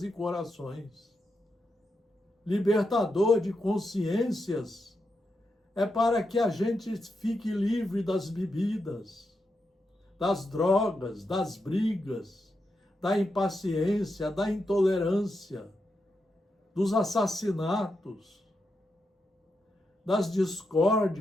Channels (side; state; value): both; normal; correlation 0.85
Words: e corações. Libertador de consciências é para que a gente fique livre das bebidas, das drogas, das brigas, da impaciência, da intolerância, dos assassinatos, das